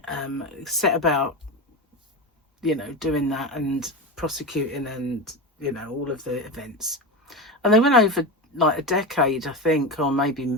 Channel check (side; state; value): both; normal; correlation 0.21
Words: set about, doing that and prosecuting and, all of the events. And they went over like a decade, I think, or